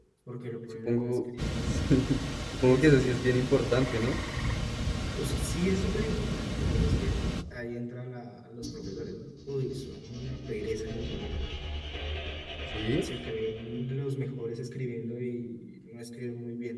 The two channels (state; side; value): identical; both; correlation 1.00